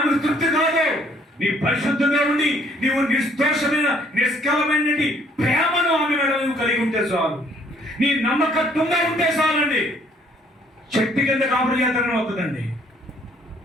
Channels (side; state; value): both; normal; correlation 0.63